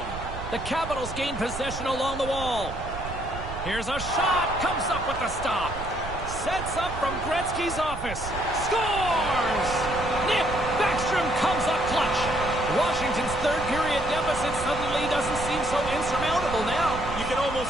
The Capitals gain possession along the wall. Here's a shot. Comes up with the stop. Sets up from Gretzky's office. Scores! Nick Backstrom comes up clutch. Washington's third period deficit suddenly doesn't seem so insurmountable now. You can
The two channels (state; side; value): noise; right; rumble, 9 dB below the sound